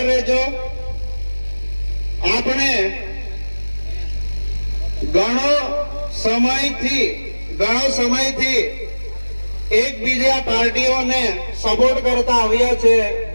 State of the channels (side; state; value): both; inverted; correlation -1.00